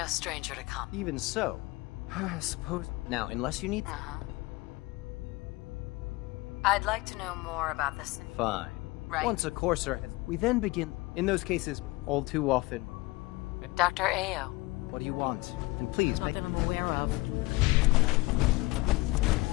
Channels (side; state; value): right; quieter; 22.2 dB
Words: stranger to comp. even so, I suppose. Now, unless you need. I'd like to know more about this. Fine. Right. Once a courser has. We then begin. In those cases, all too often. Dr. Ao. What do you want? And please Not make. that I'm aware of.